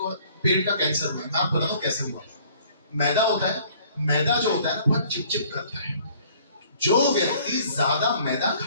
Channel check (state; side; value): inverted; both; correlation -0.56